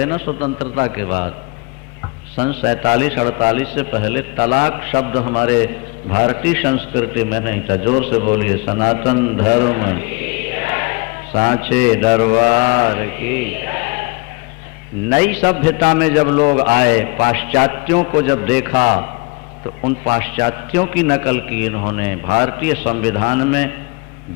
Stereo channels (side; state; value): right; quieter; 27.5 dB